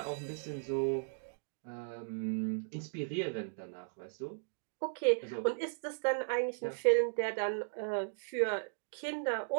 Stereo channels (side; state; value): left; silent; digital silence